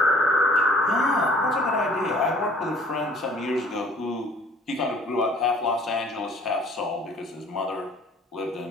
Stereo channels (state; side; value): normal; both; correlation 0.54